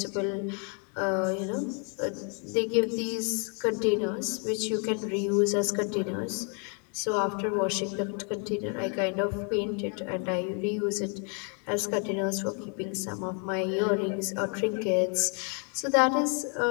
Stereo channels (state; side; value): quieter; right; 39.1 dB